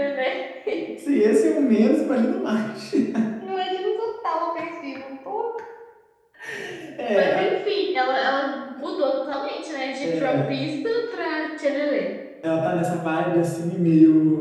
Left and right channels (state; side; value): identical; both; correlation 1.00